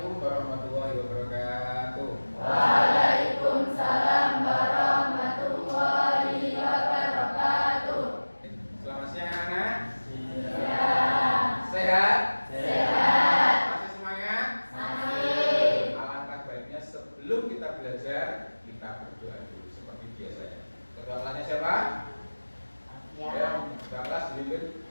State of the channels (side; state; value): both; inverted; correlation -1.00